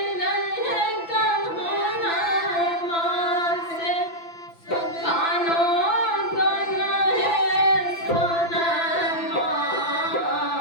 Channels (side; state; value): right; late; 5.9 ms